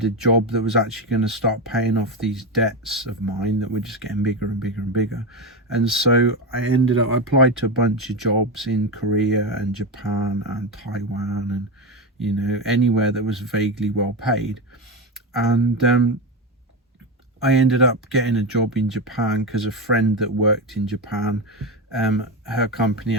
a job that was actually going to start paying off these debts of mine that were just getting bigger and bigger and bigger. And so I applied to a bunch of jobs in Korea and Japan and Taiwan, and you know, anywhere that was vaguely well paid. And I ended up getting a job in Japan because a friend that worked in Japan, her company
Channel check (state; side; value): normal; both; correlation 0.15